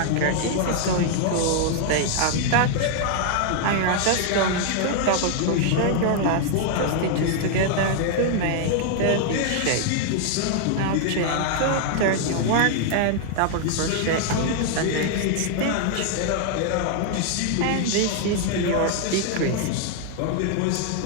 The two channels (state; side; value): different; both; correlation 0.00